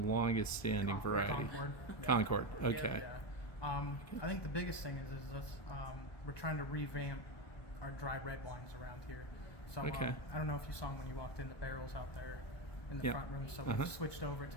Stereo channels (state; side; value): late; right; 1.2 ms